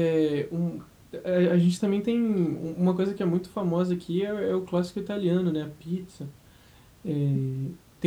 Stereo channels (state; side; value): identical; both; correlation 1.00